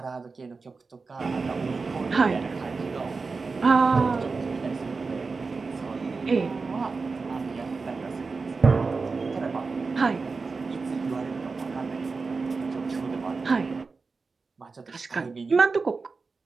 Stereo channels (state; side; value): quieter; left; 4.3 dB